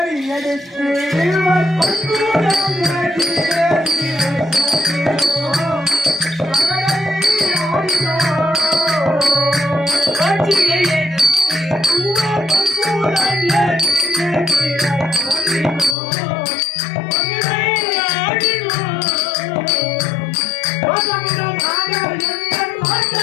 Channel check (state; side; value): drops out; right; at 16.0 s